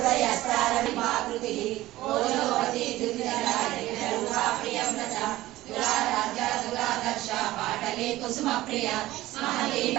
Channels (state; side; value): quieter; left; 16.6 dB